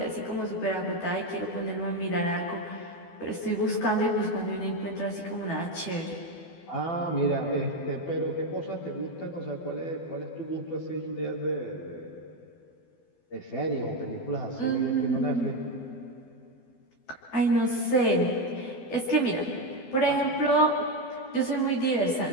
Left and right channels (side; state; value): right; late; 12 ms